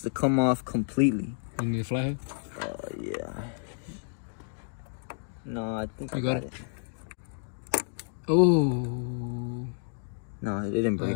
to come off completely. You need a flathead? Yeah. No, I think you I got it. Oh. No, it didn't break.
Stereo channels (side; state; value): right; silent; digital silence